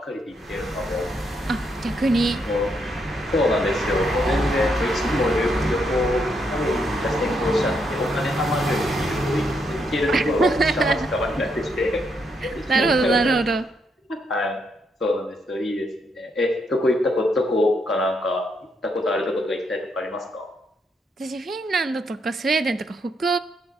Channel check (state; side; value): normal; both; correlation 0.77